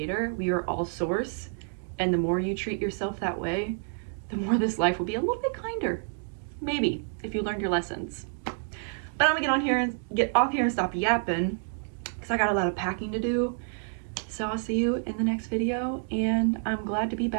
We are all source. And the more you treat yourself that way, the more this life will be a little bit kinder. Maybe, if you learned your lessons. But I'm gonna get off here and stop yapping because I got a lot of packing to do. So I'll see you in the next video, and I'm glad to be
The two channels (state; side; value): silent; left; digital silence